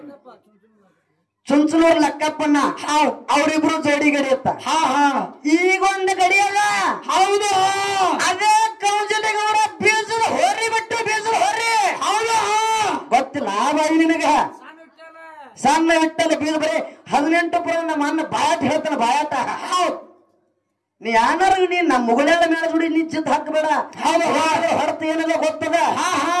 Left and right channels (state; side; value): identical; both; correlation 1.00